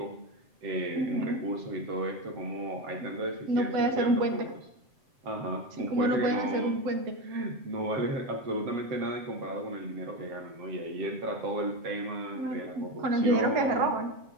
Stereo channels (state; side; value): late; left; 7.6 ms